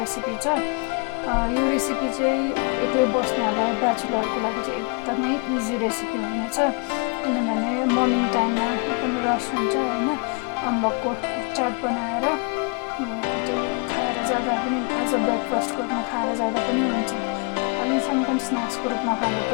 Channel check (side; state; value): right; quieter; 35.2 dB